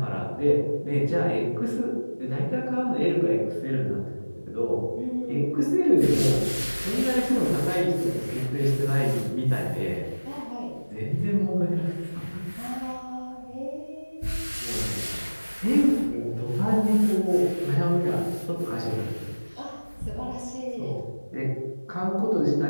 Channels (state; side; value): inverted; both; correlation -1.00